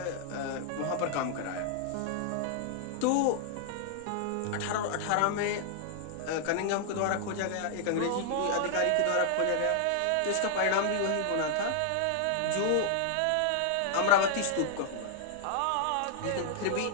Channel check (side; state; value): both; different; correlation -0.01